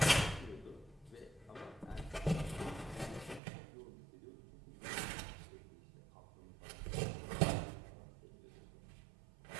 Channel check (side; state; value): left; drops out; at 3.4 s